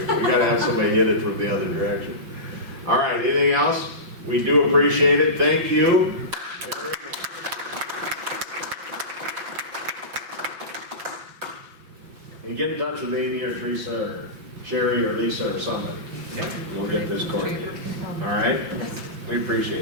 We gotta have somebody hit it from the other direction. All right, anything else? We do appreciate it, thank you. And get in touch with Amy or Teresa or Sherry or Lisa or somebody. We'll get this coordinated. All right? We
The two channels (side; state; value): left; late; 6.4 ms